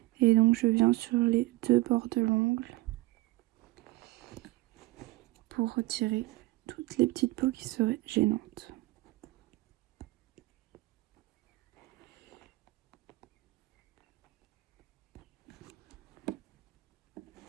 Et donc je viens sur les deux bords de l'ongle pour retirer toutes les petites peaux qui seraient gênantes.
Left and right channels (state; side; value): quieter; left; 19.5 dB